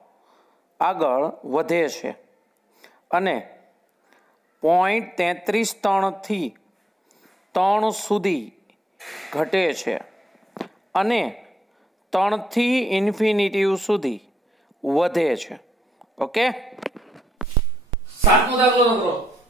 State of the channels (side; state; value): both; normal; correlation 0.79